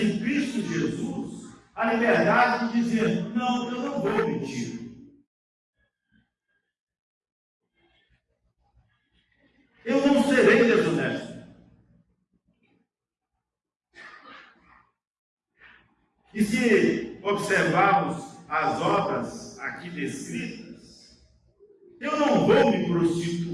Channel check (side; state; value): both; identical; correlation 1.00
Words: Cristo Jesus a liberdade de dizer: não, eu não vou mentir. Eu não serei desonesto. E se observarmos as obras aqui descritas, eu não vou me